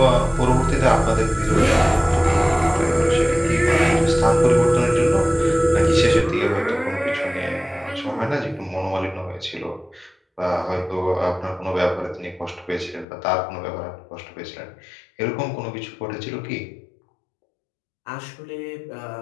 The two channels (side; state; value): right; drops out; at 13.1 s